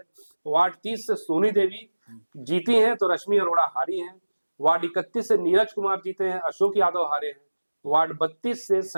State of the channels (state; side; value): inverted; both; correlation -1.00